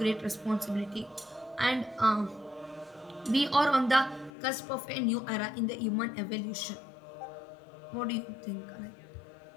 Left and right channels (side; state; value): right; drops out; at 4.3 s